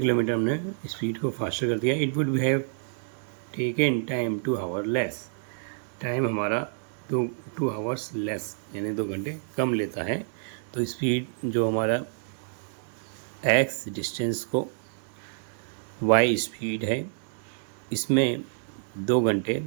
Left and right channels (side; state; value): left; silent; digital silence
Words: किलोमीटर हमने speed को faster कर दिया. It would have taken time 2 our less. Time हमारा 2 आवर्स लेस यानी 2 घंटे कम लेता है. तो स्पीड जो हमारा x डिस्टेंस को y स्पीड है, इसमें 2 घंटे